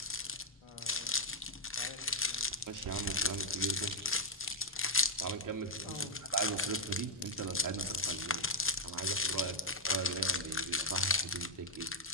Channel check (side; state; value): both; normal; correlation -0.03